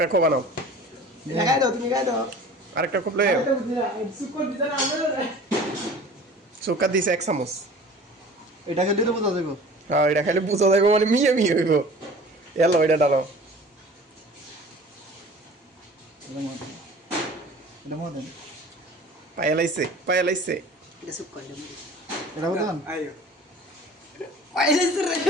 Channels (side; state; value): both; normal; correlation 0.43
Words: কো বানাও। খাই দাও তুমি খাই দাও আরেকটা খুব লয়ে সুকার দিতে না আমরা সুকার দিছে এক চামচ। এটা খেলে তো বোঝা যাবে। হ্যাঁ এটা খাইলে বুঝা যাইব মানে মিয়ে মিয়ে হইব। এলো এটা ডালো এটা মদন পায়েলাইছে পায়েলাইছে এটা সুকার এটা মদন আইও পাইলিস রে